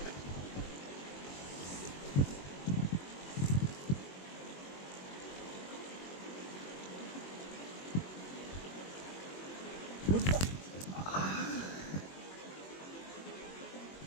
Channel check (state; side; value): late; right; 21 ms